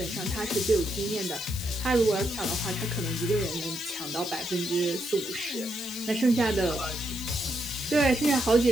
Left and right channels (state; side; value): noise; left; hiss, 11 dB below the sound